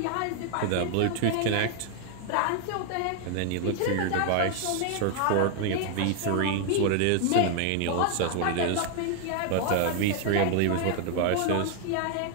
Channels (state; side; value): different; both; correlation 0.00